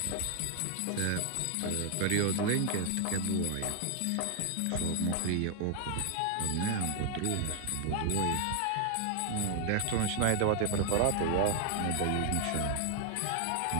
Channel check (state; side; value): different; both; correlation 0.00